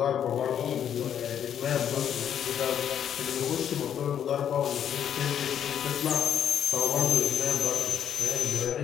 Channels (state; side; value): quieter; right; 9.3 dB